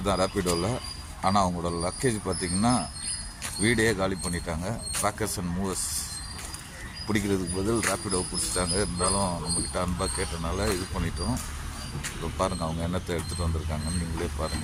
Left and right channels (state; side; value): identical; both; correlation 1.00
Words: தான் ரேப்பிடோவில். ஆனால் அவங்களோட லக்கேஜ் பார்த்திங்கன்னா வீடே காலி பண்ணிட்டாங்க. பேக்கர்ஸ் அண்ட் மூவர்ஸ் பிடிக்கிறதுக்கு பதில் ரேப்பிடோ பிடிச்சிட்டாங்க. இருந்தாலும் நம்மக்கிட்ட அன்பாக கேட்டனால இது பண்ணிட்டோம். இப்போ பாருங்கள் அவங்க என்னத்தை எடுத்துகிட்டு வந்திருக்காங்கன்னு நீங்களே